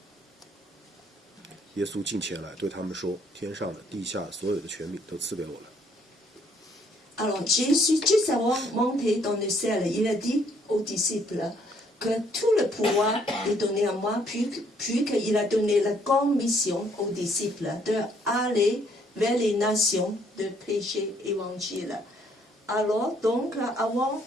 耶稣近前来对他们说：“天上的、地下所有的权柄都赐给我了。” Alors Jésus, juste avant de monter dans le ciel, il a dit aux disciples que tout le pouvoir est donné à moi, puis qu'il a donné la grande mission aux disciples d'aller vers les nations, de prêcher l'évangile. Alors donc, avant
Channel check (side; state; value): both; normal; correlation 0.66